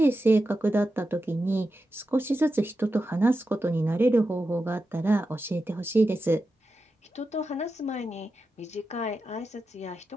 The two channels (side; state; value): both; normal; correlation 0.90